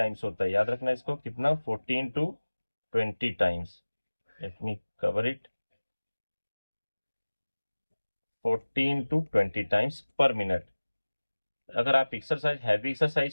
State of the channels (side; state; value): both; inverted; correlation -1.00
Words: होता है, याद रखना इसको, कितना, 14 to 20 times. Let me cover it, 14 to 20 times per minute. अगर आप एक्सरसाइज, हैवी